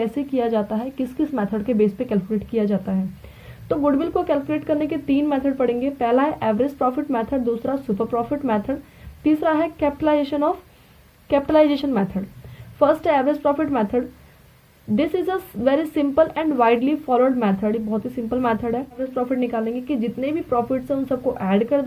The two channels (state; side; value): identical; both; correlation 1.00